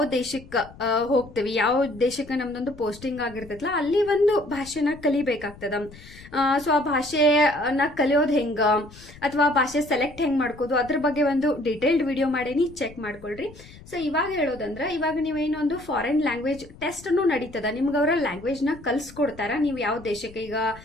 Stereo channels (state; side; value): noise; left; rumble, 20 dB below the sound